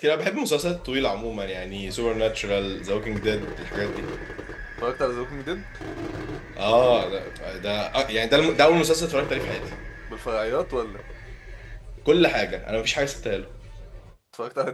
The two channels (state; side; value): identical; both; correlation 1.00